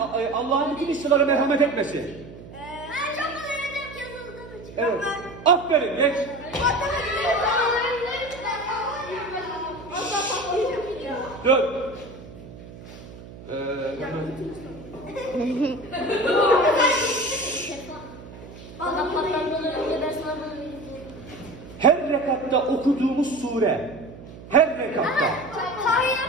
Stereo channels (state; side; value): noise; right; hum, 16 dB below the sound